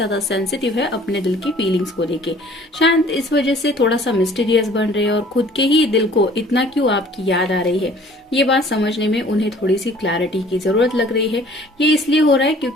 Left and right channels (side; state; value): both; normal; correlation 0.53